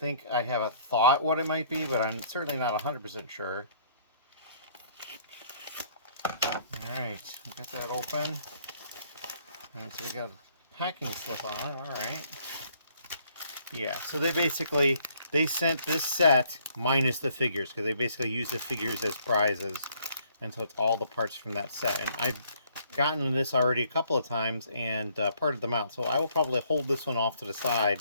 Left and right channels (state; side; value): inverted; both; correlation -0.64